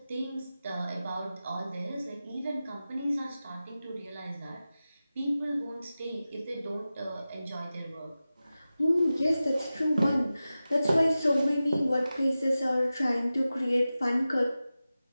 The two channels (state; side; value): inverted; both; correlation -0.95